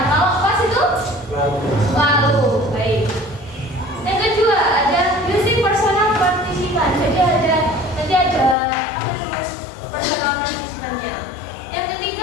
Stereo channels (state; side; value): drops out; right; at 8.6 s